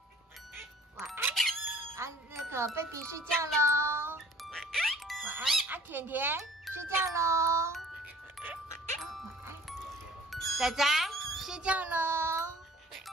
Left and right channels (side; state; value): both; normal; correlation 0.51